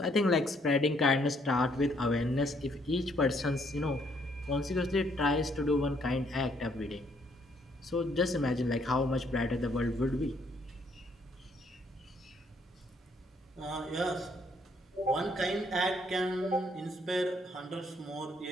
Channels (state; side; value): normal; both; correlation 0.68